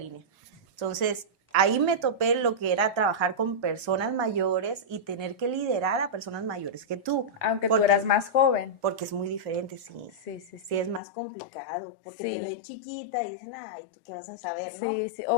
Entonces, ahí me topé lo que era trabajar con personas mayores y tener que liderar a personas mayores que tú. Aunque tú eras más joven. Porque es muy diferente, sí. Sí, es más complicado, porque te ven chiquita y dicen, ay, ¿tú qué vas a saber, no?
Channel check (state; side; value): drops out; right; at 11.0 s